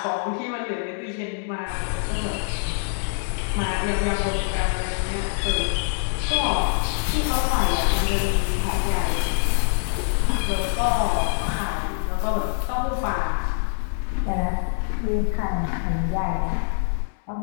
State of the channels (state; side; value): silent; right; digital silence